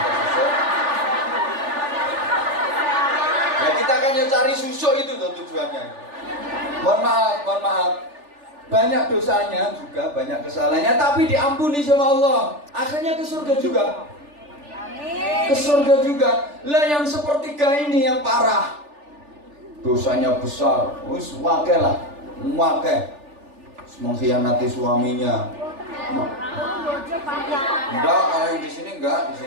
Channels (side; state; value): left; late; 3.4 ms